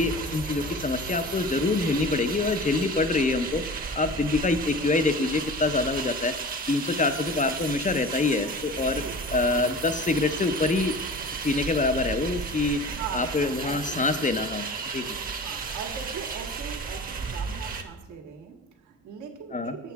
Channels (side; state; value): both; normal; correlation 0.37